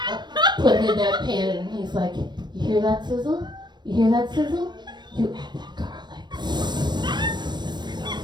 Put it in that pan, and he's like, you hear that sizzle? You hear that sizzle? You add that garlic.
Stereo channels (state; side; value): late; left; 0.21 ms